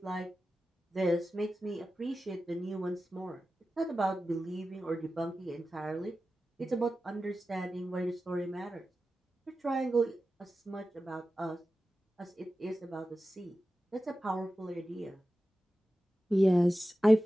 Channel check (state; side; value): normal; both; correlation 0.94